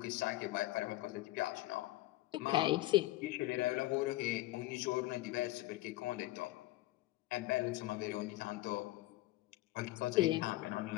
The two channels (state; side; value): quieter; right; 17.5 dB